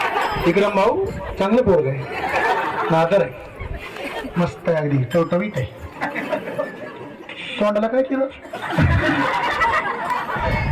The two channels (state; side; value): identical; both; correlation 1.00